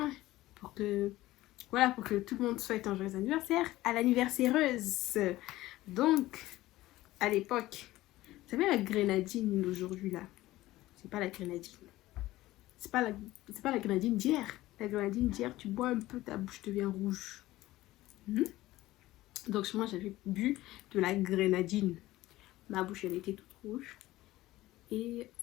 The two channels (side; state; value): right; quieter; 16.9 dB